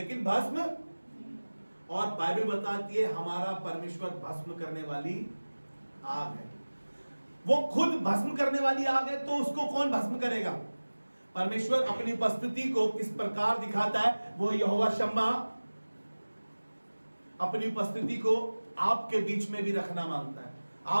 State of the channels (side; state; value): both; inverted; correlation -1.00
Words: भस्म, और बाइबल बताती है हमारा परमेश्वर भस्म करने वाली आग है। वो खुद भस्म करने वाली आग है, तो उसको कौन भस्म करेगा? परमेश्वर अपनी उपस्थिति को किस प्रकार दिखाता है? वो यहोवा शम्मा अपनी उपस्थिति को आपके बीच में भी रखना मांगता है,